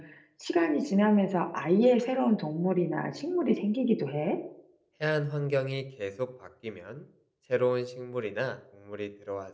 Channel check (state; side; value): identical; both; correlation 1.00